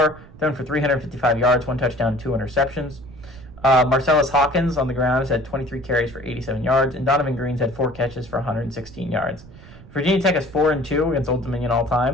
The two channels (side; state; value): right; noise; rumble, 19 dB below the sound